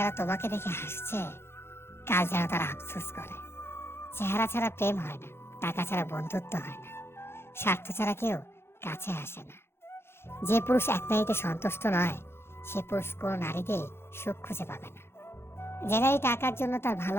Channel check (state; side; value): late; right; 0.12 ms